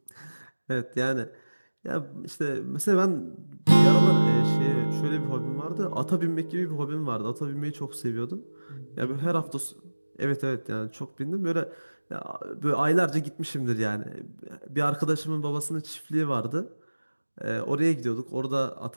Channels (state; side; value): inverted; both; correlation -1.00